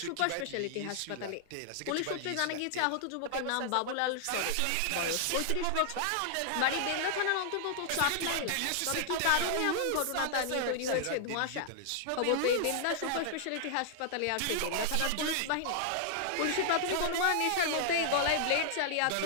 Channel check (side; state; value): both; different; correlation -0.01